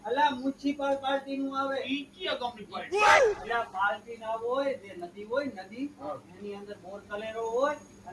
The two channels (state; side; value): identical; both; correlation 1.00